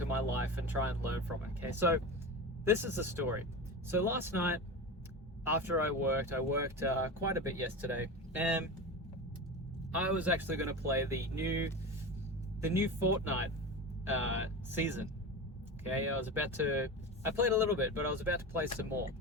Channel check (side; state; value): both; normal; correlation 0.26